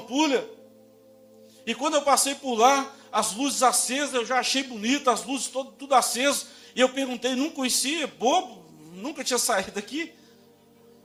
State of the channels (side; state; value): both; identical; correlation 1.00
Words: E quando eu passei por lá, as luzes acesas, eu já achei bonito, as luzes tudo acesas. E eu perguntei, não conhecia, bobo, nunca tinha saído daqui.